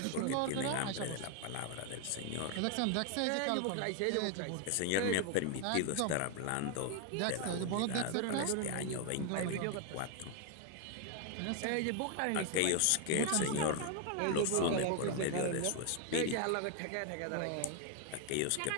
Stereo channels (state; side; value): different; both; correlation 0.01